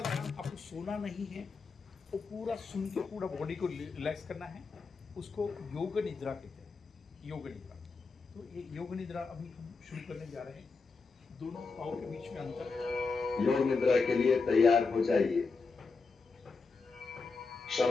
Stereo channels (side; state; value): right; quieter; 4.4 dB